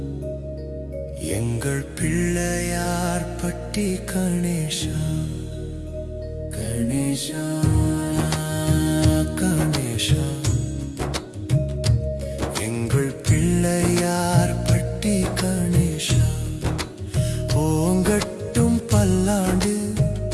எங்கள் பிள்ளையார் பட்டி கணேஷா கணேஷா கணேஷா எங்கள் பிள்ளையார் பட்டி கணேஷா ஓங்கட்டும் பல்லாண்டு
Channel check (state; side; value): identical; both; correlation 1.00